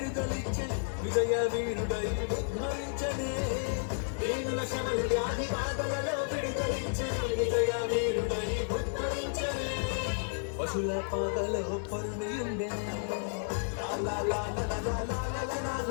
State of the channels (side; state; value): right; silent; digital silence